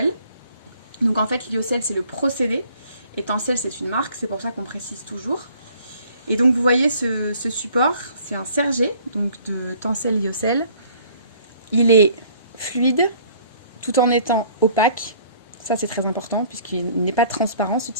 Donc en fait Lyocell c'est le procédé et Tencel c'est une marque, c'est pour ça qu'on précise toujours. Et donc vous voyez ce support, c'est un sergé donc de Tencel Lyocell. Il est fluide tout en étant opaque, ça c'est très important puisqu'il n'est pas transparent ce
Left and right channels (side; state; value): both; inverted; correlation -0.57